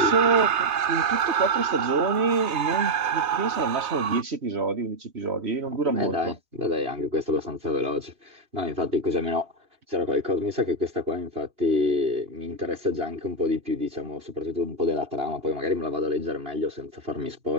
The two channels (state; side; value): late; left; 3.3 ms